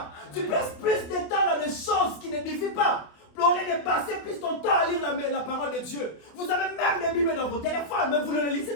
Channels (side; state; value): right; late; 28 ms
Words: Tu passes plus de temps dans des choses qui n'édifient pas. Au lieu de passer plus ton temps à lire la parole de Dieu. Vous avez même des Bibles dans vos téléphones, mais vous ne les lisez